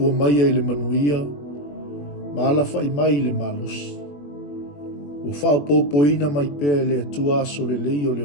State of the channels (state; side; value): late; right; 21 ms